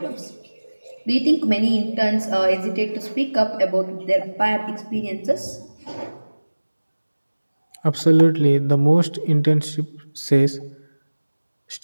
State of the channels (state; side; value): inverted; both; correlation -1.00